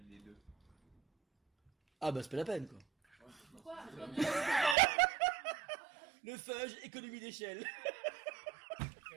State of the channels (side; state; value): left; drops out; at 4.8 s